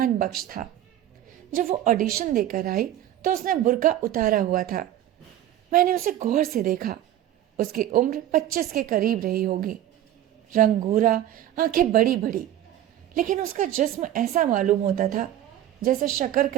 बख्श था। जब वो ऑडिशन देकर आई तो उसने बुर्का उतारा हुआ था। मैंने उसे गौर से देखा। उसकी उम्र 25 के करीब रही होगी। रंग गोरा, आंखें बड़ी बड़ी, लेकिन उसका जिस्म ऐसा मालूम होता था जैसे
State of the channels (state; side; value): quieter; left; 12.4 dB